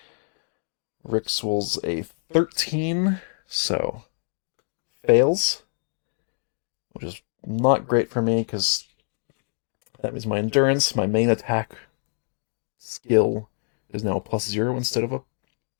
Rix rolls a 13, so fails, which is not great for me because that means my endurance, my main attack skill, is now a +0 instead of a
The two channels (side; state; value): right; silent; digital silence